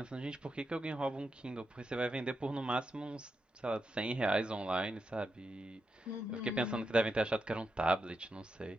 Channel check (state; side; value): normal; both; correlation 0.86